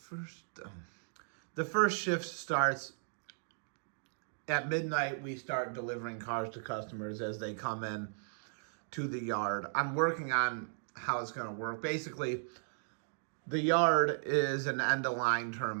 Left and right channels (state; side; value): silent; left; digital silence